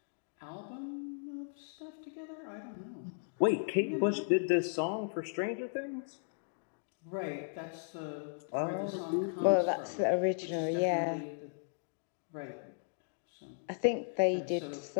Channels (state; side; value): silent; right; digital silence